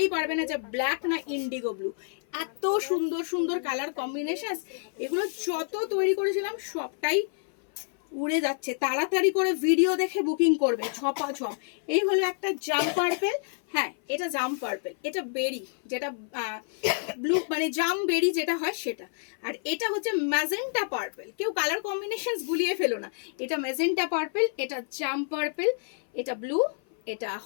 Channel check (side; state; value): right; silent; 55 dB below the other